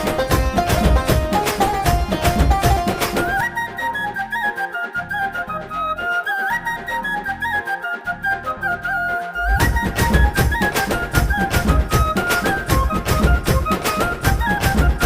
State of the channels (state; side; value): identical; both; correlation 1.00